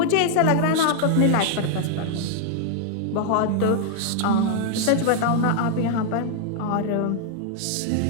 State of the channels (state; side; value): different; both; correlation 0.00